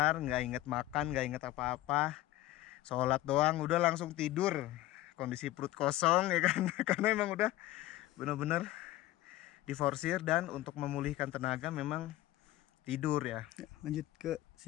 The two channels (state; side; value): quieter; right; 16.0 dB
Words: nggak inget makan, nggak inget apa-apa. Sholat doang, udah langsung tidur. Kondisi perut kosong ya kan. Karena emang udah bener-bener diforsir, dan untuk memulihkan tenaga memang tidur ya. Lanjut ke